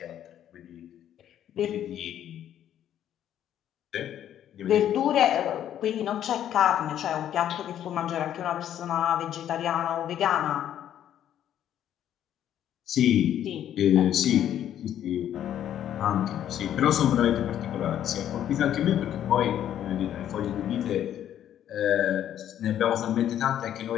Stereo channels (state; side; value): quieter; right; 10.7 dB